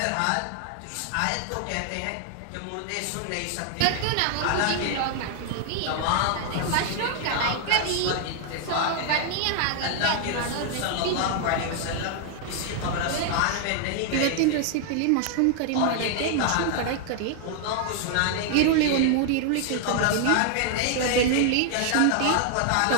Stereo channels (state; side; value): different; both; correlation 0.00